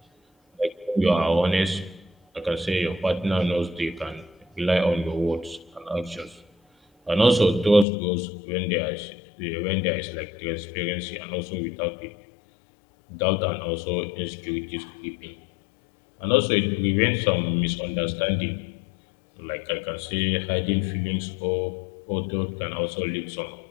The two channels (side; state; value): right; drops out; at 7.9 s